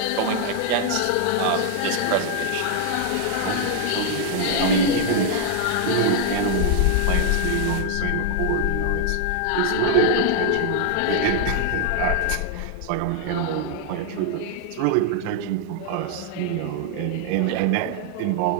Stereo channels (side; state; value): both; different; correlation 0.00